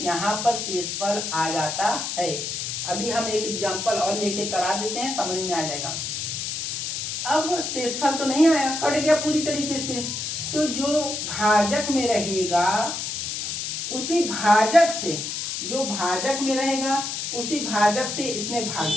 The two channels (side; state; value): left; noise; hiss, 4 dB below the sound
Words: यहाँ पर शेषफल आ जाता है, अभी हम एक एग्जांपल और लेके करा देते हैं, समझ में आ जाएगा। अब शेषफल तो नहीं आया, कट गया पूरी तरीके से, तो जो भाजक में रहेगा उसी भाजक से, जो भाजक में रहेगा उसी भाजक से इसमें भाग